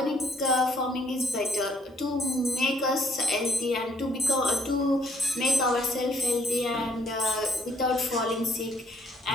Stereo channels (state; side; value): normal; both; correlation 0.64